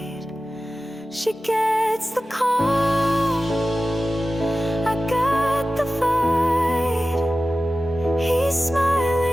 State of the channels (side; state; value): both; normal; correlation 0.95